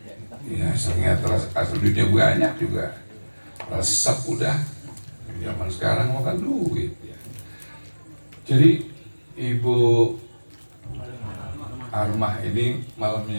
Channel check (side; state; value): both; inverted; correlation -1.00